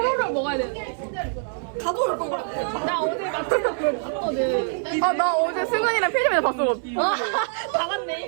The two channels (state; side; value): silent; left; digital silence